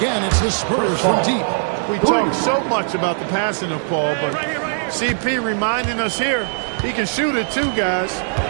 it's the Spurs from deep. We talk so much about the passing of Paul, but CP reminding us here, he can shoot it too, guys.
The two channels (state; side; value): silent; left; 66 dB below the other